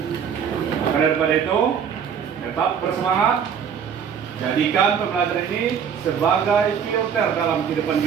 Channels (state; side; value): quieter; left; 7.5 dB